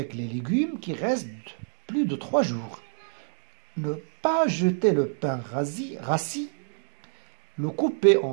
les légumes qui restent plus de 3 jours. Ne pas jeter le pain rassis, le couper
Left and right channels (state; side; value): silent; left; 60 dB below the other